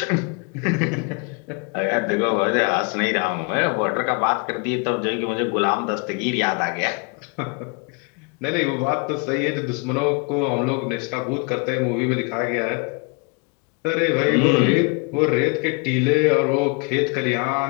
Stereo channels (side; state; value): right; quieter; 32.4 dB